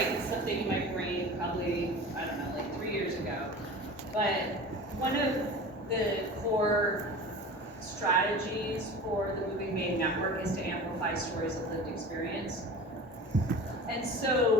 something in my brain probably, I don't know, like 3 years ago. But one of the core strategies for the Moving Maine Network is to amplify stories of lived experience. And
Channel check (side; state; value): both; normal; correlation 0.36